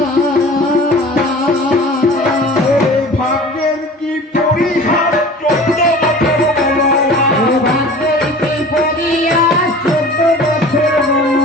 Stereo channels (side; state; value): both; normal; correlation 0.42